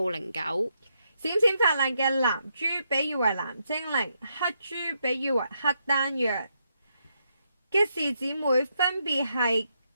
09。閃閃發亮嘅藍珠比喻為藍精靈，黑珠比喻為黑丹藥。吉氏姊妹分別係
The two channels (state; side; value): inverted; both; correlation -0.80